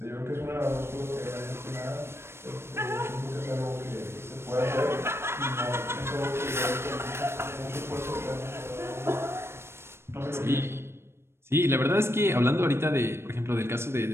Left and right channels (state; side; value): late; left; 0.12 ms